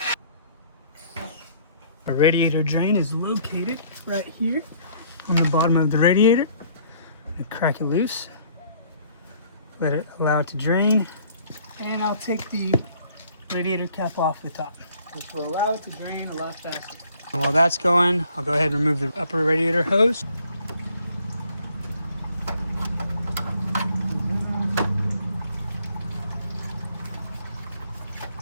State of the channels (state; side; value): inverted; both; correlation -0.60